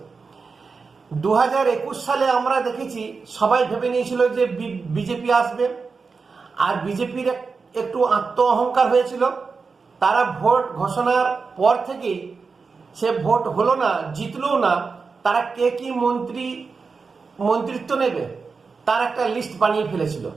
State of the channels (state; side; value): quieter; left; 4.8 dB